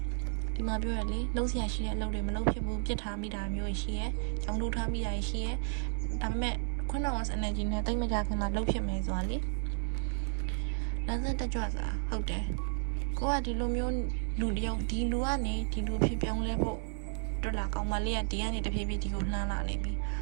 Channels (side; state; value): left; silent; digital silence